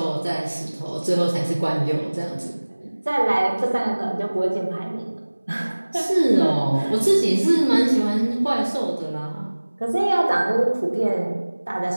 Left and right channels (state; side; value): inverted; both; correlation -1.00